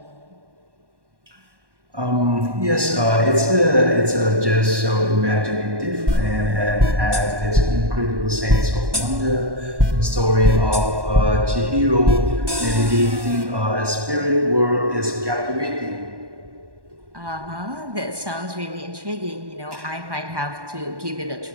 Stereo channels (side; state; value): left; late; 1.1 ms